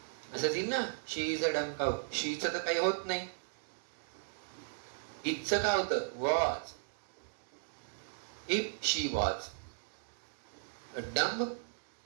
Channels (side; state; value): left; silent; digital silence